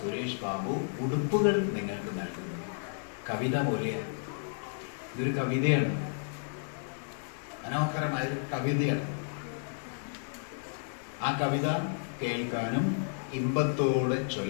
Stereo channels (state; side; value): silent; right; digital silence